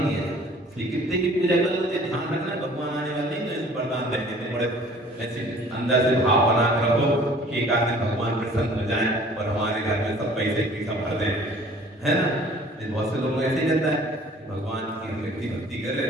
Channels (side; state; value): both; normal; correlation 0.51